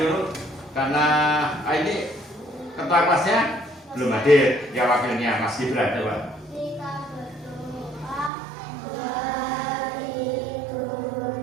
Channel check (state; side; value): drops out; left; at 8.3 s